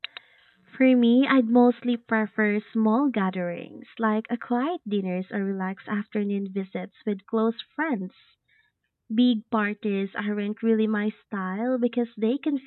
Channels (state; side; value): identical; both; correlation 1.00